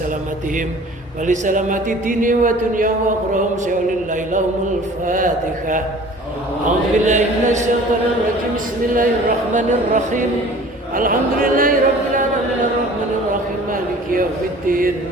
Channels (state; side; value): normal; both; correlation 0.46